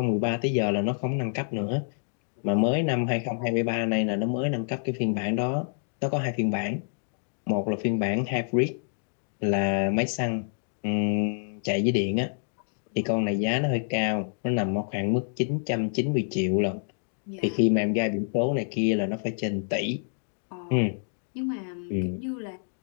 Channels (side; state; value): right; silent; digital silence